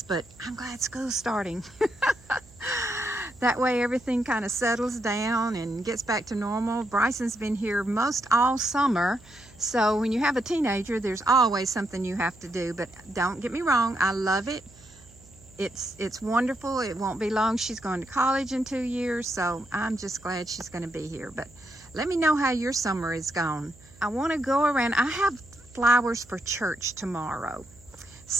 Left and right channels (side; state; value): right; noise; hum, 25 dB below the sound